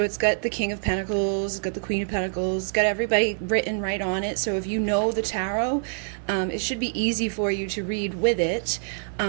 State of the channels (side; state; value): left; silent; digital silence